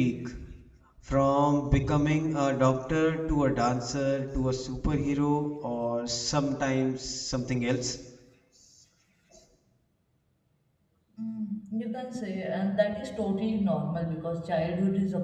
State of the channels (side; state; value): both; identical; correlation 1.00